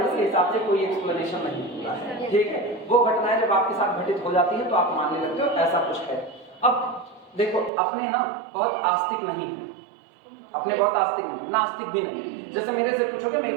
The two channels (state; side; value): drops out; left; at 7.7 s